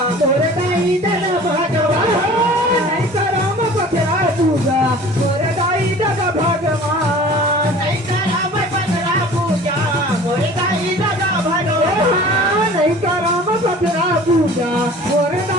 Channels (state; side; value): normal; both; correlation 0.44